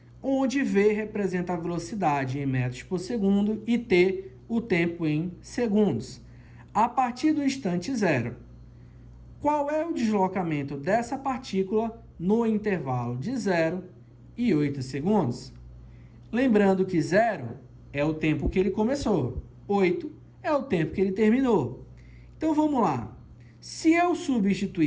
onde V representa a velocidade em metros por segundo e T o tempo em segundos. A partir do instante zero, qual é o deslocamento dessa partícula no intervalo de 0 e 8 segundos? Lembrando que 0 é o tempo que ele começou, 8 é o tempo que ele terminou. Então, vamos lá. Se eu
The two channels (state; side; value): identical; both; correlation 1.00